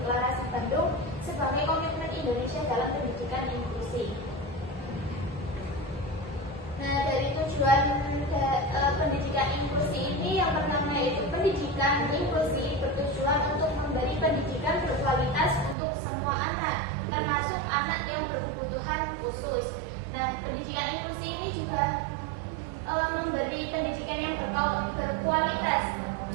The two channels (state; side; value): drops out; left; at 15.8 s